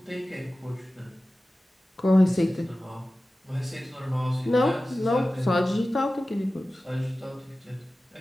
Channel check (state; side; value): normal; both; correlation 0.96